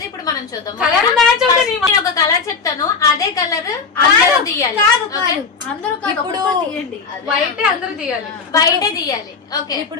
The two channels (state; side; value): quieter; right; 5.0 dB